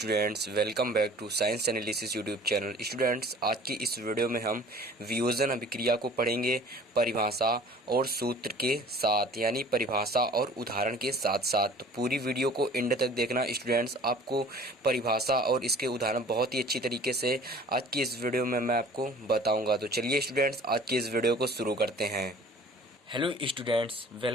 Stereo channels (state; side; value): normal; both; correlation 0.48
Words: welcome back to science analysis YouTube channel. Students, आज की इस video में हम वियोजन अभिक्रिया को पढ़ेंगे परिभाषा और सूत्र के साथ, यानी परिभाषा और उदाहरण के साथ साथ। तो पूरी वीडियो को एंड तक देखना स्टूडेंट्स। आपको परिभाषा और इसके उदाहरण बहुत ही अच्छी तरीके से आज की इस वीडियो में मैं आपको बताऊँगा। तो चलिए स्टूडेंट्स, आज की इस वीडियो को शुरू करते हैं। Hello students,